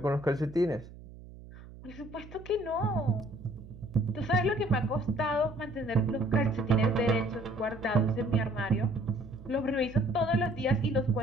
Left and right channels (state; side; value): noise; right; hum, 17 dB below the sound